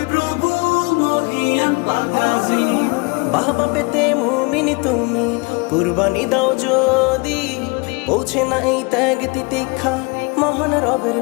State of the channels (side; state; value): right; quieter; 28.9 dB